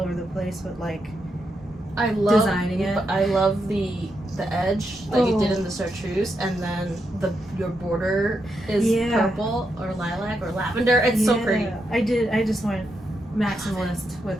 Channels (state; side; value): normal; both; correlation 0.83